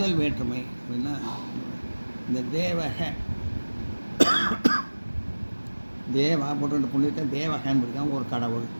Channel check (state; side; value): inverted; both; correlation -1.00